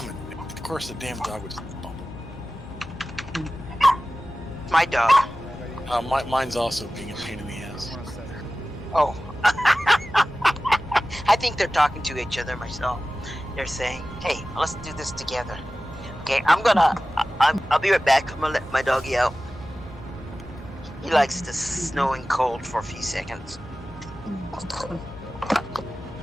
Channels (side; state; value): both; normal; correlation 0.96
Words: Of course, the damn dog was bumping. My dog. Mine's also being a pain in the ass. Oh. I think they're talking to each other myself. They're saying, hey, let's do this together. Okay, I'll be right back. I'm gonna let my doggy out. He likes the snow and cold for a few seconds.